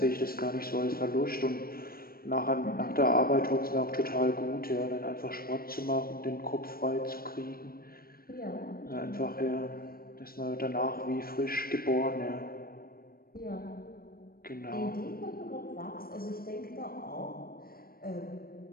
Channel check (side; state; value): right; late; 0.43 ms